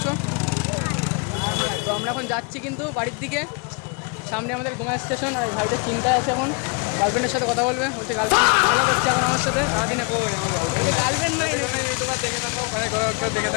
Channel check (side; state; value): right; quieter; 32.5 dB